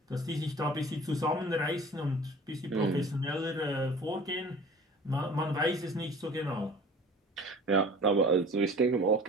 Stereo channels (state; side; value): normal; both; correlation 0.44